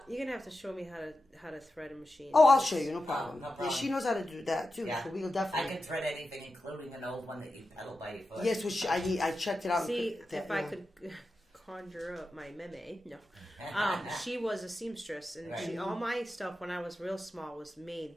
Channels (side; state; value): both; normal; correlation 0.91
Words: You're gonna have to show me how to thread a machine. Oh, I'll show you, no problem. No problem. Yeah, she knows how to do that too, so we'll definitely. I can thread anything, including an old one that you pedal by your foot. Yes, which I checked it out. See, if I could conjure up my meme, no. She was a seamstress, and all my stuff when I was real small was made